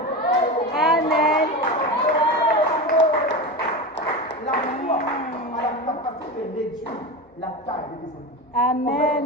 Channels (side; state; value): both; normal; correlation 0.23